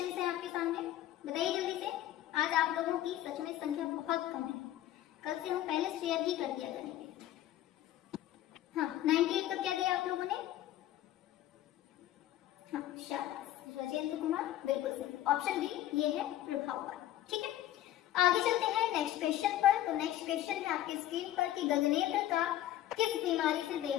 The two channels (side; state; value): right; quieter; 13.2 dB